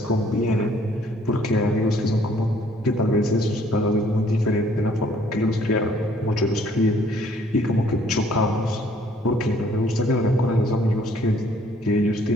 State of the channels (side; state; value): both; normal; correlation 0.61